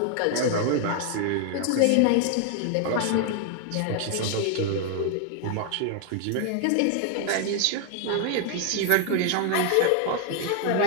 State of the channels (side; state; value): both; different; correlation 0.00